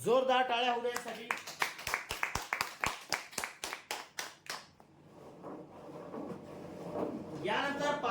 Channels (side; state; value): both; identical; correlation 1.00